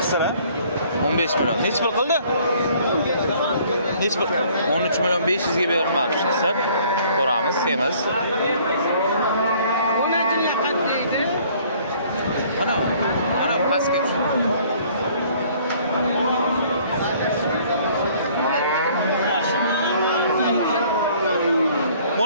Qisira 15 million. Necha pul qildi? Necha pul? 13 million 500 ga berilmoqchi. Qisir. Ko'ramiz, semiz. Mana pastga tush.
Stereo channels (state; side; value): inverted; both; correlation -0.58